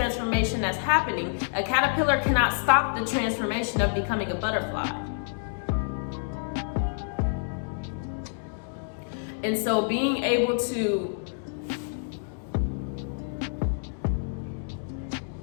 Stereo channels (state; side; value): silent; right; digital silence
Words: that's happening. A caterpillar cannot stop the transformation of becoming a butterfly. And so being able to